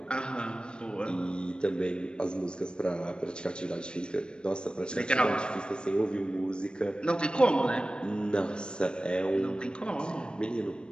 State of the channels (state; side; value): late; right; 0.053 ms